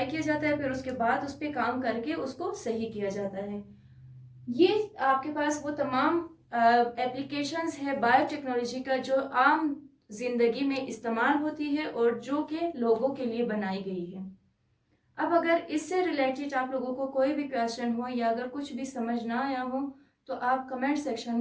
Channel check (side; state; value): both; identical; correlation 1.00